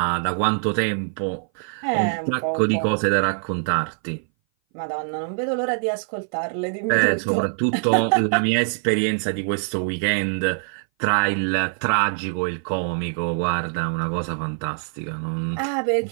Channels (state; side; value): silent; left; 59 dB below the other